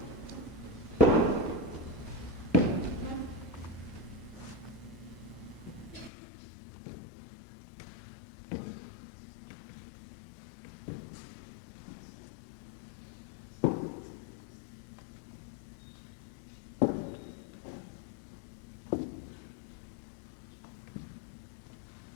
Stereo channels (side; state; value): right; drops out; at 6.1 s